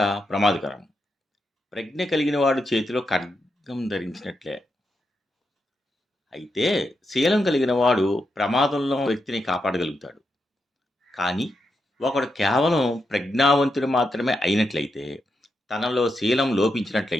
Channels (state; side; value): normal; both; correlation 0.84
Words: ప్రమాదకరం. ప్రజ్ఞ కలిగిన వాడు చేతిలో ఖడ్గం ధరించినట్లే. అయితే శీలం కలిగిన వాడు ప్రమాదంలో వ్యక్తిని కాపాడగలుగుతాడు. కానీ ఒకడు కేవలం ప్రజ్ఞావంతుడు మాత్రమే అయినట్లయితే, తనలో శీలం